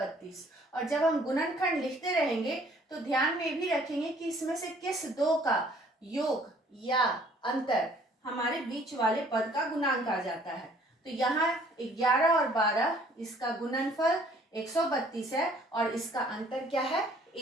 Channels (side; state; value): both; normal; correlation 0.58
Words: और जब हम गुणनखंड लिखते रहेंगे तो ध्यान में भी रखेंगे कि इसमें से किस दो का योग या अंतर हमारे बीच वाले पद का गुणांक आ जाता है। तो यहाँ 11 और 12, इसका गुणनफल 132 है और इसका अंतर क्या है?